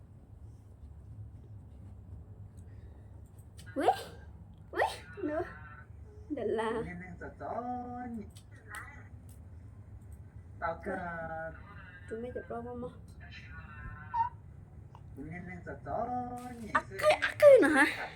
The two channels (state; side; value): identical; both; correlation 1.00